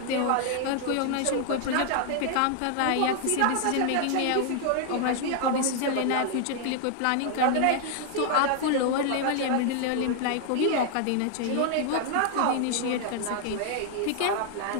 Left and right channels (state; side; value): different; both; correlation 0.00